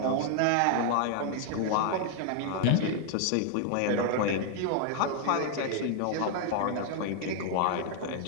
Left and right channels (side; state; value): both; different; correlation 0.00